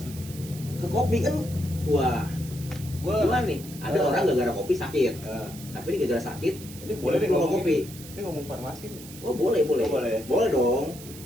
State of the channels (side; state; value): right; noise; hiss, 16 dB below the sound